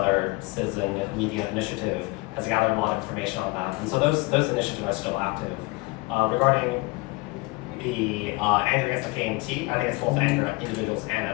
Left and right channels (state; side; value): quieter; right; 23.8 dB